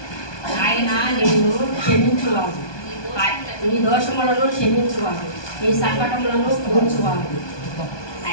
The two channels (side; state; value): right; late; 1.2 ms